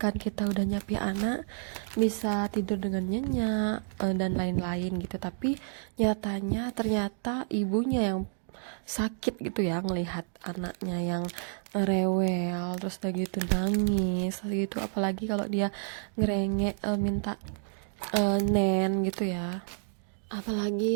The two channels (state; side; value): silent; left; digital silence